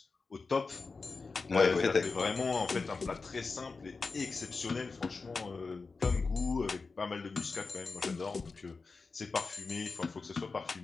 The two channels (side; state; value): right; quieter; 4.3 dB